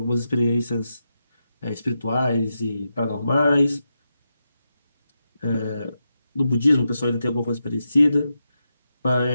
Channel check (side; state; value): both; inverted; correlation -0.87